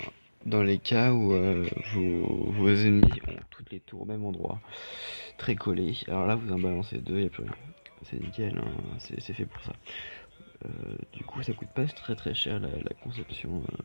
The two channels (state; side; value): inverted; both; correlation -1.00